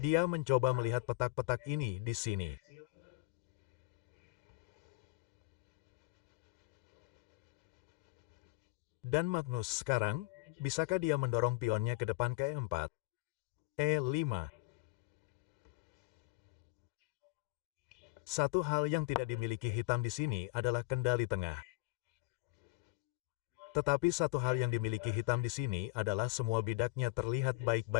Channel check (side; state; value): right; quieter; 23.2 dB